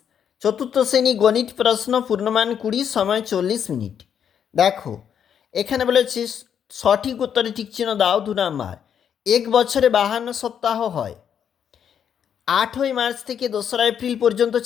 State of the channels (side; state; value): right; quieter; 8.4 dB